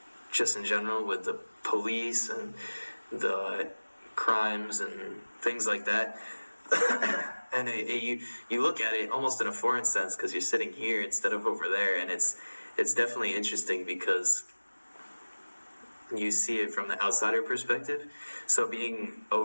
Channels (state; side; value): inverted; both; correlation -1.00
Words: just in general with the police and the crimes and things like that. And you look at it almost in a foreign sense, because you're sitting here instead of over there, and it's definitely interesting, because you see it from the outsider perspective. So being